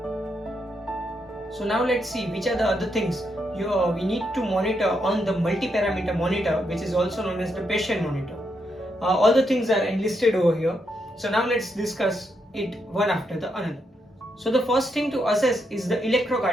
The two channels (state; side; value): normal; both; correlation 0.80